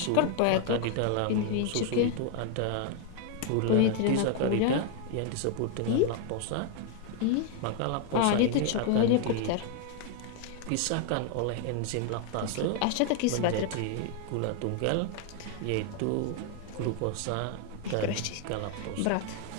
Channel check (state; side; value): different; both; correlation 0.00